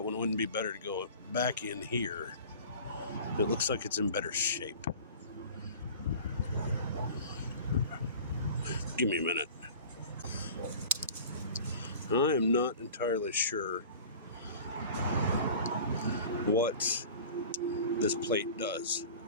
one wouldn't be better to go back in here. It looks like it's in better shape. Give me a minute. I am not entirely sure what this plate does,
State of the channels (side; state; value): both; inverted; correlation -0.40